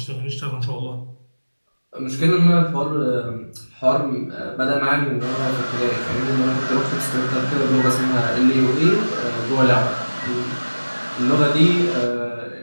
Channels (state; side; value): inverted; both; correlation -1.00